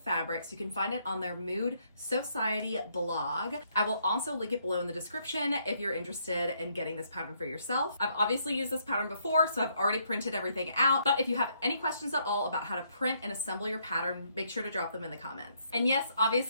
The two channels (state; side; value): inverted; both; correlation -0.72